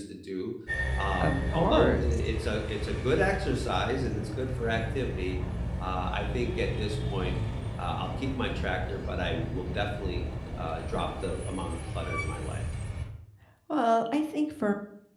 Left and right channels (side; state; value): both; identical; correlation 1.00